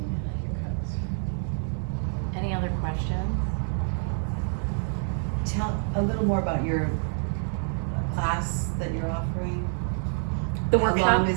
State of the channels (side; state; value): left; silent; 60 dB below the other